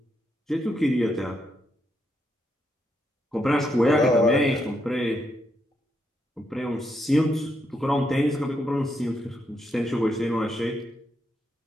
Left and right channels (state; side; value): normal; both; correlation 0.80